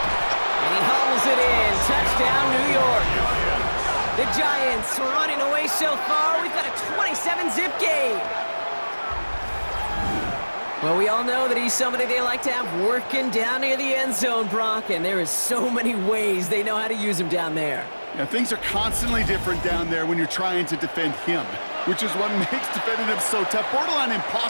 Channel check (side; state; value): both; inverted; correlation -1.00